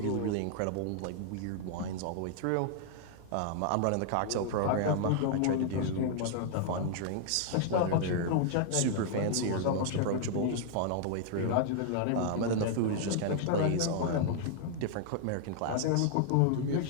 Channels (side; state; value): both; different; correlation -0.01